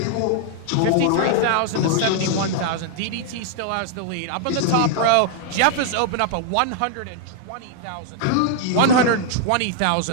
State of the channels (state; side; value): different; both; correlation 0.00